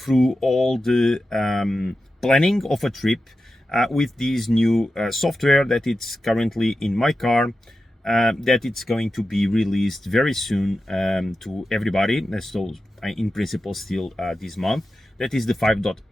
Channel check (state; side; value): normal; both; correlation 0.91